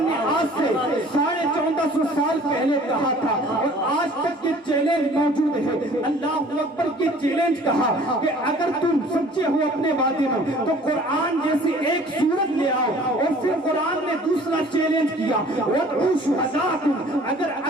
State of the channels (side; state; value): both; normal; correlation 0.51